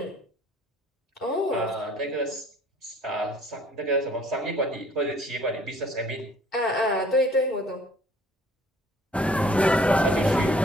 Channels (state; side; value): normal; both; correlation 0.57